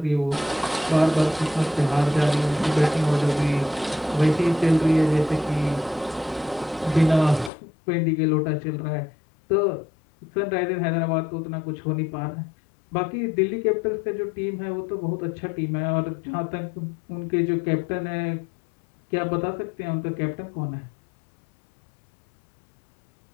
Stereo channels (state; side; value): drops out; right; at 7.5 s